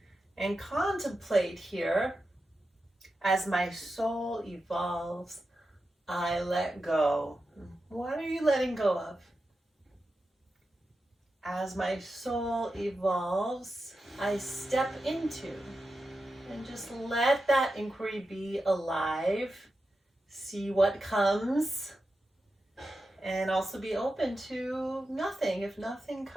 and contemplate here, as my soul evolves, I let go. What are you letting go of? As my soul evolves, I step into, and just let that inquiry be alive. See what comes, and also be open to nothing if nothing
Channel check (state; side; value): normal; both; correlation 0.90